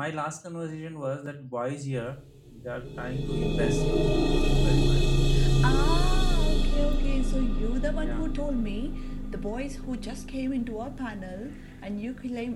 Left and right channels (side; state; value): both; identical; correlation 1.00